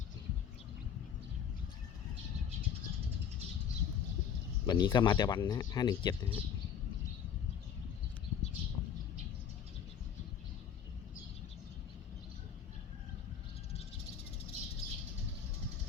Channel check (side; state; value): right; quieter; 8.2 dB